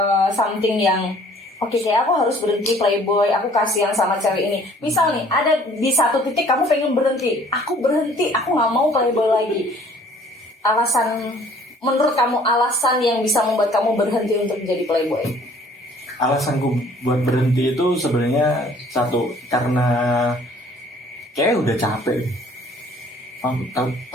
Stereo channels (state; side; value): normal; both; correlation 0.56